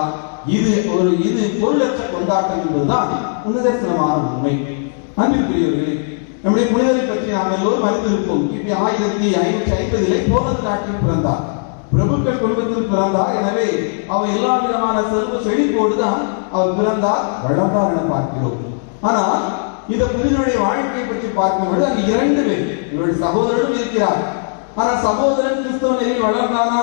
இது பொருளற்ற கொண்டாட்டம் என்பதுதான் நிதர்சனமான உண்மை. அன்புக்குரியவர்களே, நம்முடைய புனிதரை பற்றி நாம் எல்லோரும் அறிந்திருப்போம். கிபி 1550 போலந்து நாட்டில் பிறந்தார். பிரபுக்கள் குடும்பத்தில் பிறந்தார். எனவே அவர் எல்லா விதமான செல்வ செழிப்போடுதான் அவர் பிறந்தார், வளர்ந்தார் என பார்க்கிறோம். ஆனால் இந்த புனிதனுடைய வாழ்க்கை பற்றி பார்க்கும்போது அங்கு 2 பேர், இவருடைய சகோதரனும் இருக்கிறார். ஆனால் சகோதரன் கிறிஸ்தவ நெறியில் வளர்ந்தானா?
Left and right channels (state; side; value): silent; right; digital silence